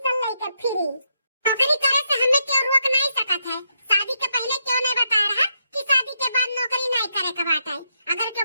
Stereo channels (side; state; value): both; inverted; correlation -0.79